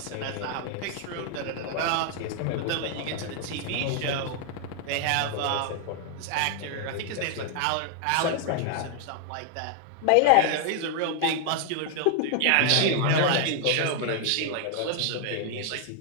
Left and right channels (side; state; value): both; different; correlation 0.00